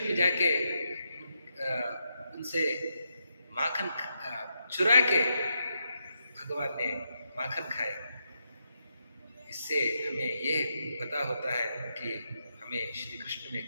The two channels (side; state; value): both; inverted; correlation -0.82